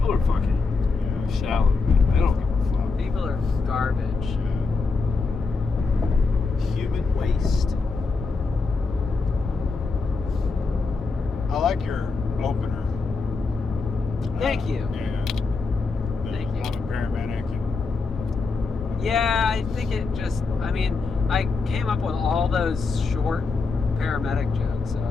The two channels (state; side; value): quieter; right; 4.3 dB